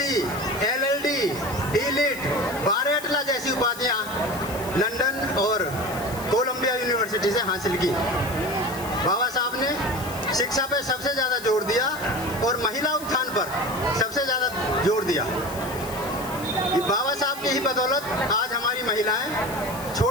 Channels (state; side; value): noise; left; hiss, 14 dB below the sound